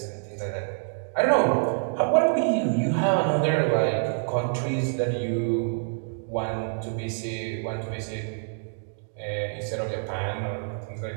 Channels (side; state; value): left; silent; digital silence